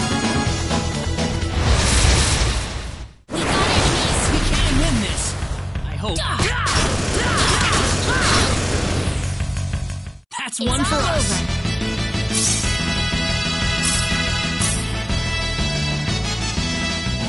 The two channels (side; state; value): both; identical; correlation 1.00